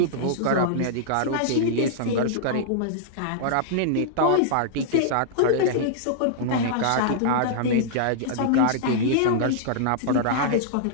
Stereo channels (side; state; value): both; different; correlation -0.02